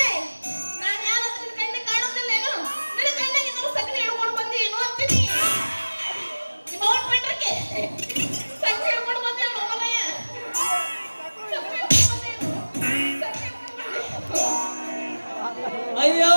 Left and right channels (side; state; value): both; inverted; correlation -1.00